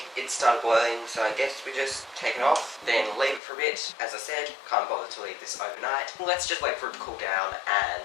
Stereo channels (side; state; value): right; drops out; at 3.4 s